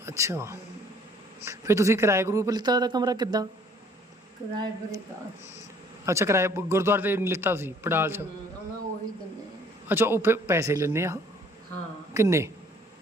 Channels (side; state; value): both; normal; correlation 0.58